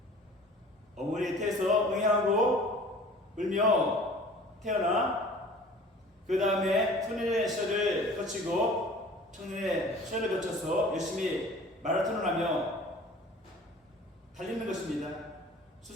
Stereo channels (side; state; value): both; normal; correlation 0.46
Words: 어머니의 태에서 응애하고 울며 태어나 그 다음에 소년의 시절을 거치고 청년의 시절을 거쳐서 열심히 마라톤을 하며 달리는 것입니다.